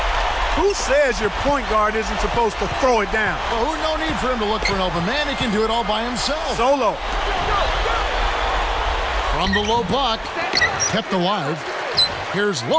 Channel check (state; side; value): identical; both; correlation 1.00